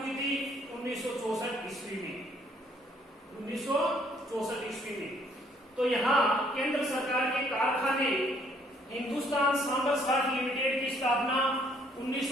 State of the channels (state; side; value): normal; both; correlation 0.64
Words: थी? 1964 ईस्वी में। 1964 ईस्वी में। तो यहाँ केंद्र सरकार के कारखाने हिंदुस्तान सांबर साल्ट लिमिटेड की स्थापना